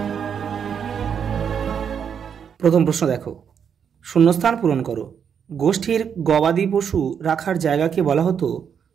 প্রথম প্রশ্ন দেখো, শূন্যস্থান পূরণ করো। গোষ্ঠীর গবাদি পশু রাখার জায়গাকে বলা হতো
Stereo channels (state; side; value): quieter; left; 7.5 dB